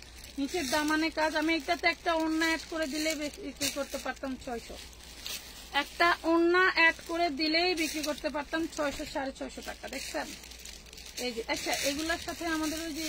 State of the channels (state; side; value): identical; both; correlation 1.00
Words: নিচের দামানে কাজ। আমি এটাতে একটা ওড়না অ্যাড করে দিলে বিক্রি করতে পারতাম 600, একটা ওড়না অ্যাড করে দিলেই বিক্রি করতে পারতাম 600-650 টাকা। দেখছেন এই যে। আচ্ছা এগুলোর সাথে আমাদের ওই